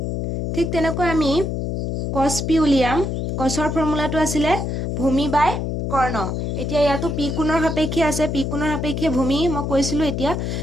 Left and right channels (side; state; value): left; noise; hum, 2 dB below the sound